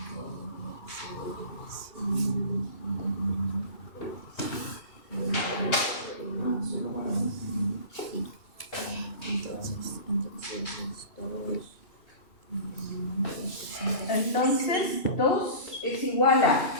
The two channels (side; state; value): right; late; 2.7 ms